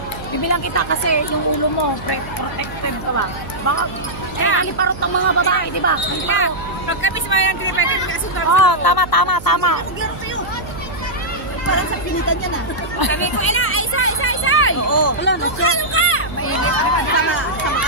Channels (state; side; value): noise; right; hum, 14 dB below the sound